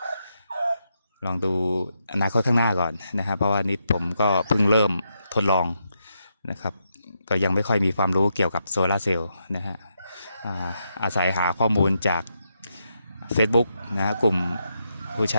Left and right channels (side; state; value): both; inverted; correlation -0.82